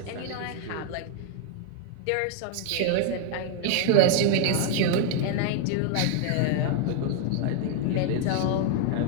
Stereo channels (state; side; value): different; both; correlation 0.00